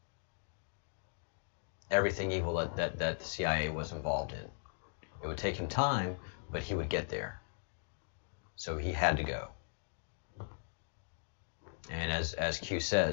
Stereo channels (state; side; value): silent; right; digital silence